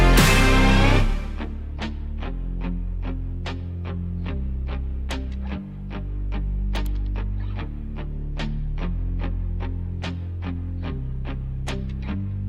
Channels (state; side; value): identical; both; correlation 1.00